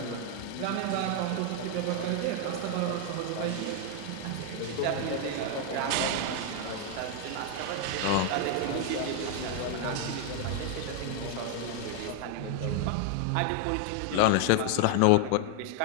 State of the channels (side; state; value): both; different; correlation 0.00